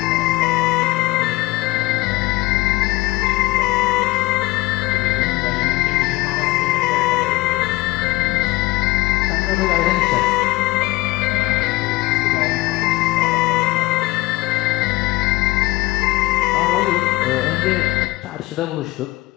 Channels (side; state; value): right; quieter; 19.9 dB